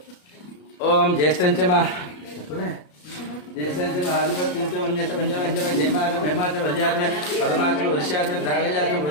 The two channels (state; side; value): late; right; 34 ms